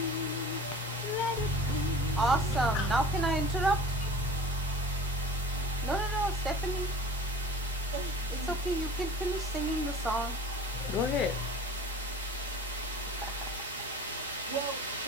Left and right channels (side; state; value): left; noise; hum, 22 dB below the sound